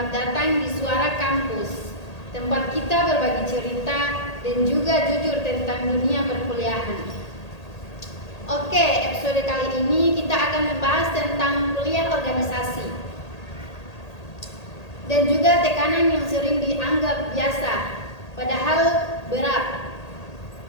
datang di Suara Kampus, tempat kita berbagi cerita dan juga jujur tentang dunia perkuliahan. Oke, episode kali ini kita akan membahas tentang kuliah organisasi dan juga tekanan yang sering dianggap biasa, padahal berat.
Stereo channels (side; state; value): right; late; 1.8 ms